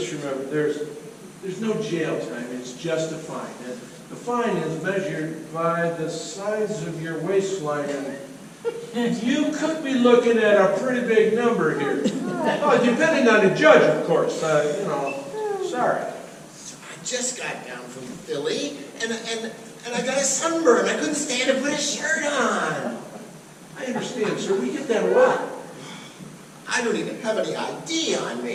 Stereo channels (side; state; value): both; identical; correlation 1.00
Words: remember, there's no jail time, it's just a fine. And the fine is measured by the size of your waistline, and you could be looking at a pretty big number here. Oh, depending on the judge, of course, you know, sorry. So I just got down from Philly, and I got a sunburn. I couldn't stand to put a shirt on. I understand, sir, we get that a lot. I don't even have any ID on